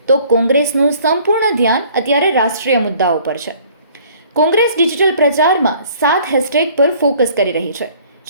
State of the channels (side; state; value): both; inverted; correlation -0.55